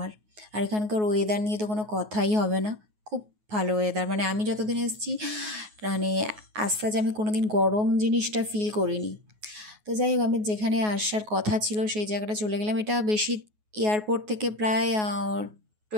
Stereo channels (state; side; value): late; left; 9.4 ms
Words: আর এখানকার ওয়েদার নিয়ে তো কোনো কথাই হবে না, খুব ভালো ওয়েদার। মানে আমি যতদিন এসেছি, মানে আজ আমি কোনো দিন গরম জিনিসটা ফিল করিনি। তো যাই হোক, আমি যেখানে আসার কথা ছিল সেই জায়গাটা চলে গেলাম। এটা বেশি এয়ারপোর্ট থেকে প্রায়